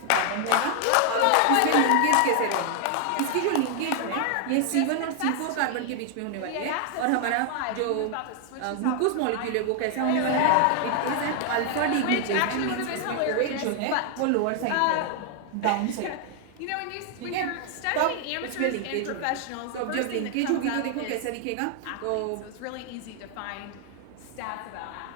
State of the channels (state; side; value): different; both; correlation 0.00